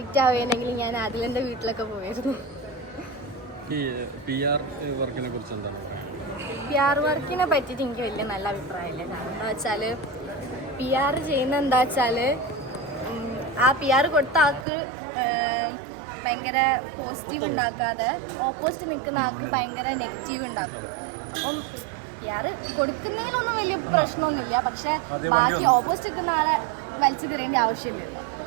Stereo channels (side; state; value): left; drops out; at 14.7 s